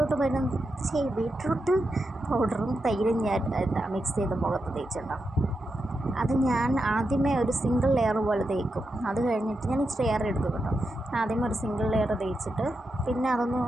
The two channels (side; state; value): both; normal; correlation 0.87